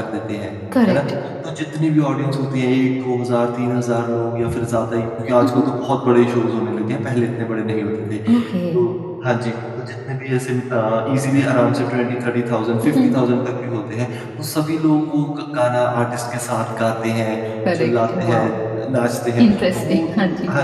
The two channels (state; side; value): identical; both; correlation 1.00